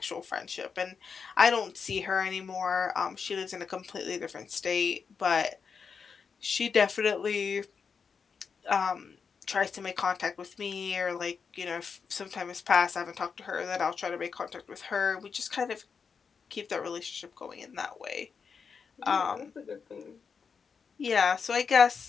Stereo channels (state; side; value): quieter; right; 5.9 dB